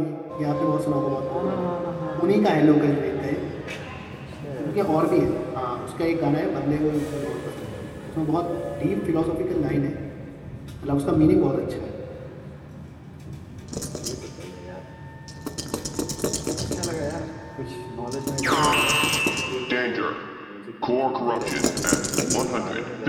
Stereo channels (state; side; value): identical; both; correlation 1.00